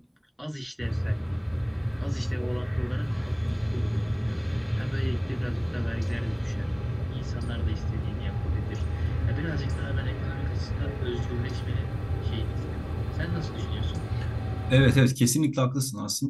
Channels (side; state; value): both; identical; correlation 1.00